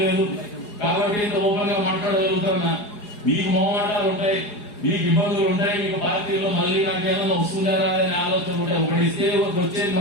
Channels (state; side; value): late; right; 4.8 ms